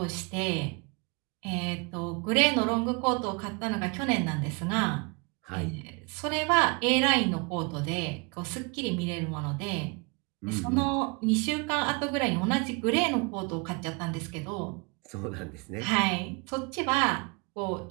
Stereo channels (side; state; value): left; quieter; 31.2 dB